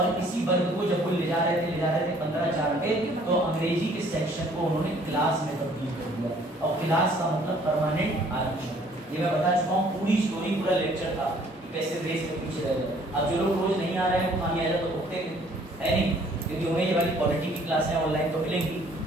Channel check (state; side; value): normal; both; correlation 0.59